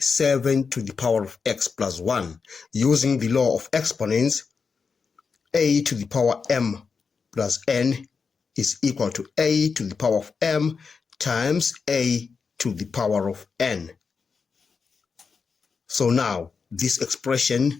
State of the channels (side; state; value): right; quieter; 5.4 dB